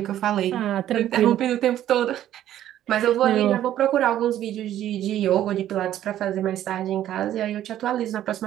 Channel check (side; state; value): left; quieter; 12.1 dB